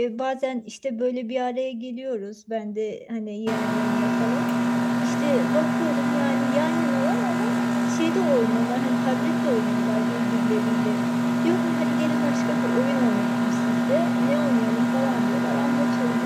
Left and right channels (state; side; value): identical; both; correlation 1.00